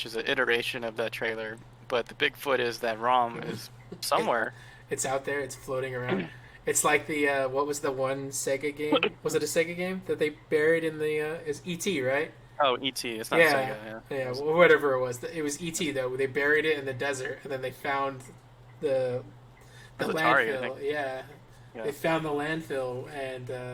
is an iteration of that trailer, but the Bigfoot is that ROM is somewhere. It's out there. It's floating around. It's like the what was the one Sega game? Was it a Sega game that they buried in the? Is E.T. right? Oh, E.T. It's not Sega. Yeah. Whatever it was. It was E.T. though. They buried it in the desert, and then they found the Atari, landfill. Yeah. They found the landfill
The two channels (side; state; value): both; identical; correlation 1.00